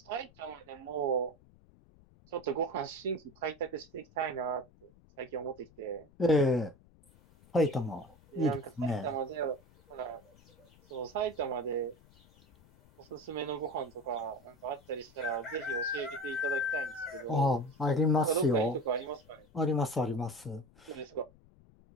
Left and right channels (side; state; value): left; noise; rumble, 26 dB below the sound